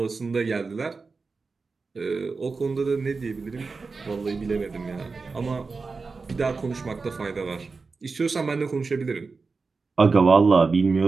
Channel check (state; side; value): quieter; left; 4.3 dB